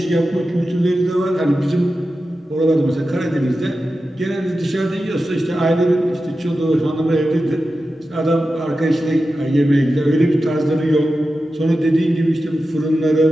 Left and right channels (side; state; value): both; normal; correlation 0.92